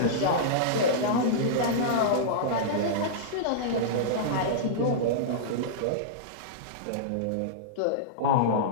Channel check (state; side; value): different; both; correlation -0.03